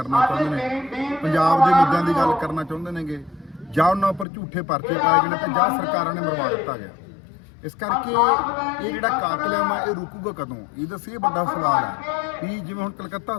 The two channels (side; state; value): right; drops out; at 4.2 s